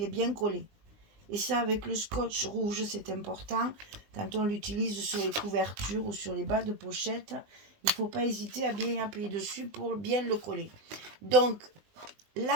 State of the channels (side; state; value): left; late; 19 ms